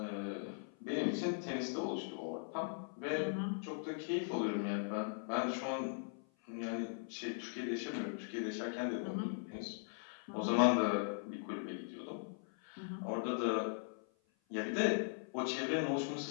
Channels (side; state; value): right; silent; 51 dB below the other